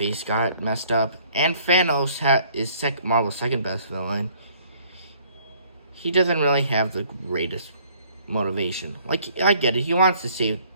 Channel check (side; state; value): both; inverted; correlation -0.59